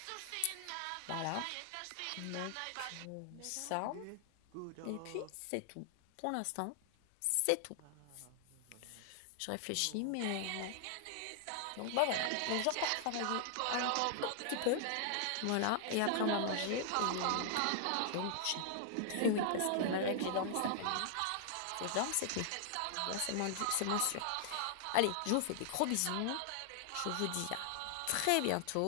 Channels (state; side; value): different; both; correlation 0.00